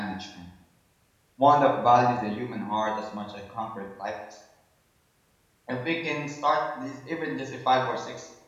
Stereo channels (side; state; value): both; identical; correlation 1.00